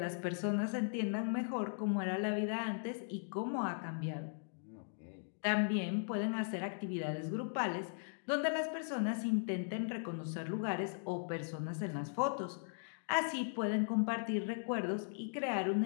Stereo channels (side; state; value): right; silent; digital silence